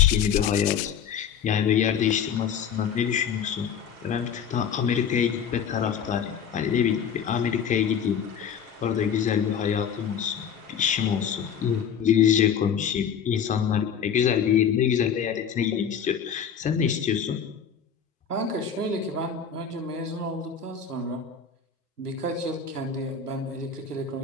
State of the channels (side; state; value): right; quieter; 7.6 dB